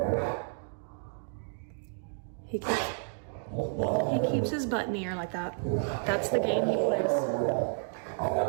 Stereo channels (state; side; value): silent; left; digital silence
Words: He keeps his butt in the air like that. That's the game he plays.